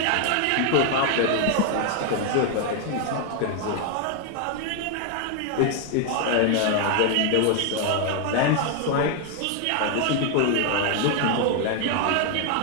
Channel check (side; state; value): both; different; correlation 0.00